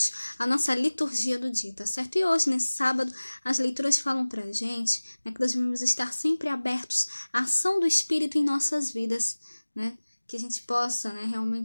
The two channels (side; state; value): both; inverted; correlation -1.00